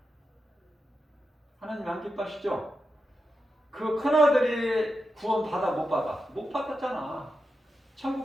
하나님 안 기뻐하시죠? 그 큰아들이 구원 받아 못 받아? 못 받았잖아.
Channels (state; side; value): normal; both; correlation 0.88